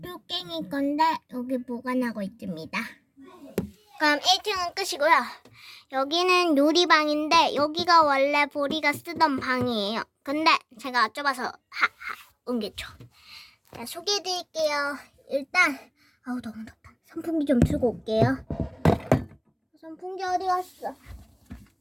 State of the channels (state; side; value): identical; both; correlation 1.00